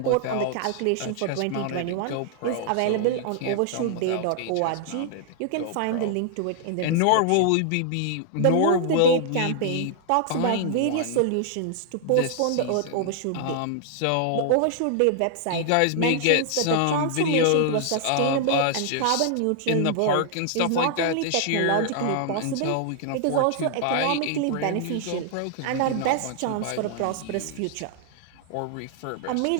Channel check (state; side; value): different; both; correlation -0.01